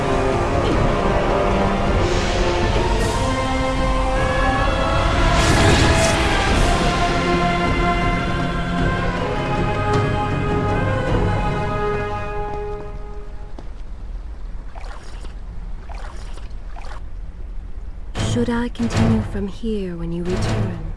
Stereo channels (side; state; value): both; identical; correlation 1.00